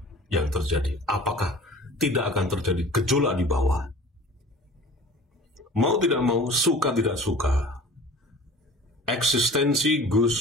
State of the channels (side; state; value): both; normal; correlation 0.43